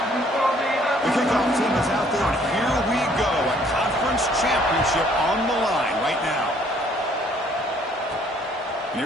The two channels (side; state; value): both; normal; correlation 0.62